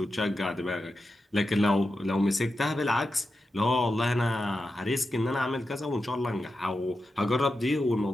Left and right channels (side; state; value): both; normal; correlation 0.90